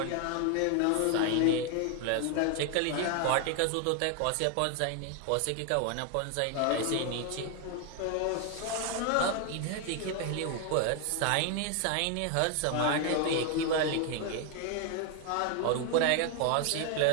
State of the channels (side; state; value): both; different; correlation 0.01